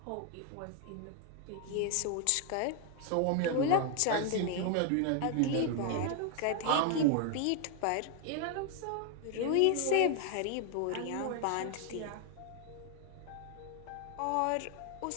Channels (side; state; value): both; different; correlation 0.00